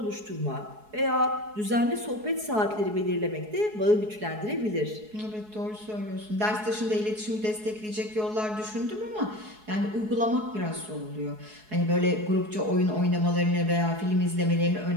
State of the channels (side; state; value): left; late; 4.7 ms